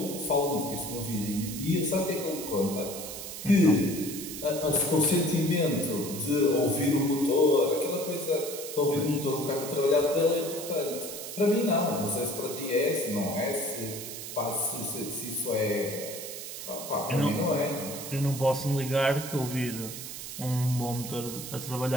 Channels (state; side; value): noise; right; hiss, 9 dB below the sound